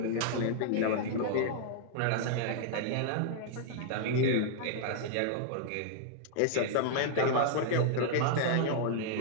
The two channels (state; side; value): different; both; correlation -0.01